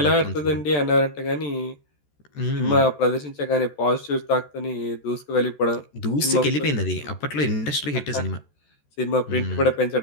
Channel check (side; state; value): right; late; 14 ms